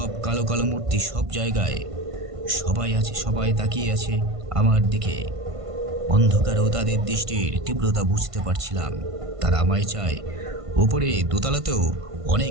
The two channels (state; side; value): late; left; 1.5 ms